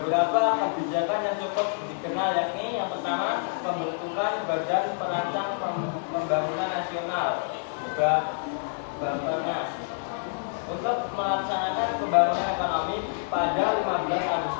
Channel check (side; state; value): right; silent; 60 dB below the other